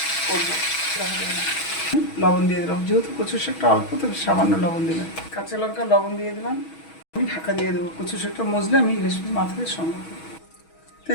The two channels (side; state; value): right; late; 6.2 ms